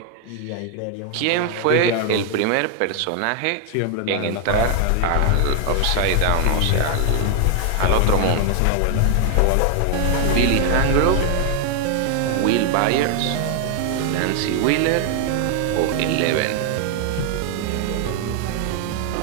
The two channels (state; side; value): different; both; correlation 0.00